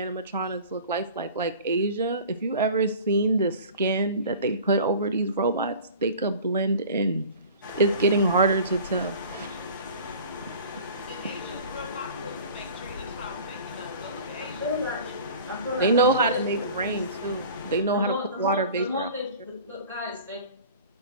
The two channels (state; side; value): inverted; both; correlation -0.42